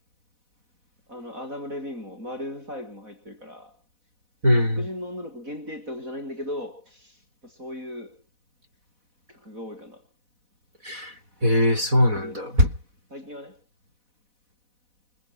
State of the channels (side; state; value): left; late; 4.1 ms